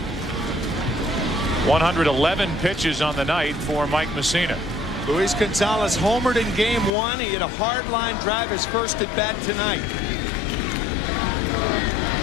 111 pitches on the night for Mike Messina. Luis Gonzalez homered in game 1. He hit a hard line drive, his first at bat tonight.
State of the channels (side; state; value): right; drops out; at 7.0 s